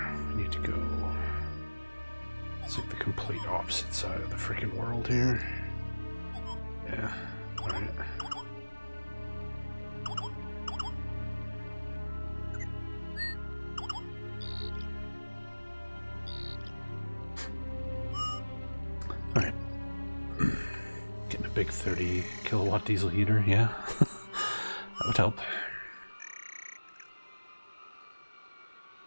We need to go... It's like the complete opposite side of the freaking world here. Yeah, alright. Alright. Getting a big 30 kilowatt diesel heater, yeah. That would help.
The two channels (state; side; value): inverted; both; correlation -1.00